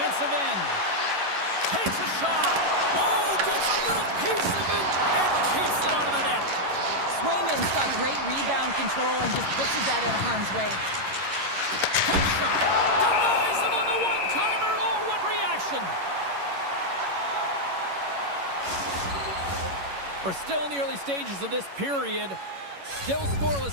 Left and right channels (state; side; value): late; left; 11 ms